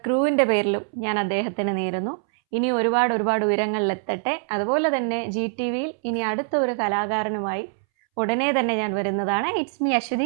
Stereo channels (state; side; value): silent; left; 63 dB below the other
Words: ക്രൂവിൻ്റെ പേരിലും ഞാൻ അദ്ദേഹത്തിന് നേരുന്നു. ഇനി ഒരുപാട് ഉയരങ്ങളിലെത്തട്ടെ. അതുപോലെ തന്നെ GTVയിൽ ഇനി അടുത്ത ഒരു കലാകാരനുമായി ഉടനെ തന്നെ ഞാൻ വരുന്നതാണ്. It's me